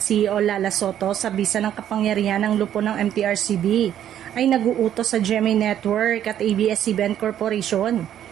CEO Lala Soto sa bisa ng kapangyarihan ng lupo ng MTRCB ay naguutos sa GMA Network at ABS-CBN Corporation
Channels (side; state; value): left; quieter; 10.6 dB